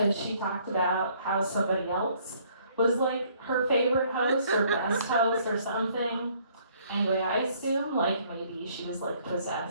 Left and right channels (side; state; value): both; inverted; correlation -0.62